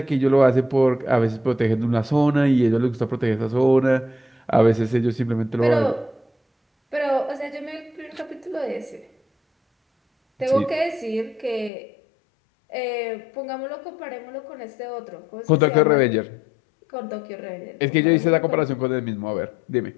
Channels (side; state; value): right; drops out; at 11.7 s